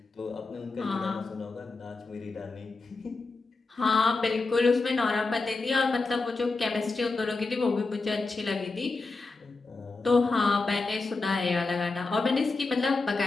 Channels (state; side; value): quieter; right; 3.7 dB